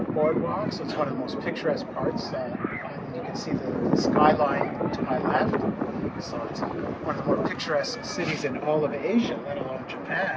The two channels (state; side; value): identical; both; correlation 1.00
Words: boardwalk, so it's one of the most picturesque parts. You can see the skyline to my left, so it's one of the more picturesque cities in all of Asia, let alone